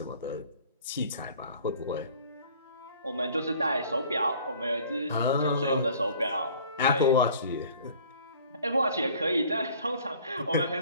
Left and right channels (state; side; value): inverted; both; correlation -0.51